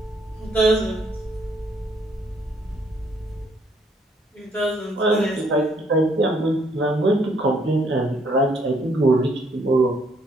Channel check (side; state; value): both; normal; correlation 0.67